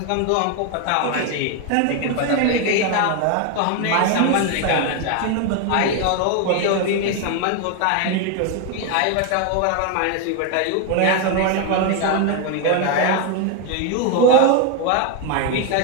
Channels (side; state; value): both; different; correlation 0.01